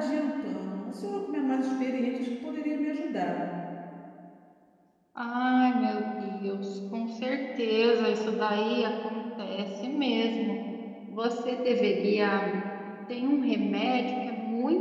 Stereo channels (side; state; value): both; identical; correlation 1.00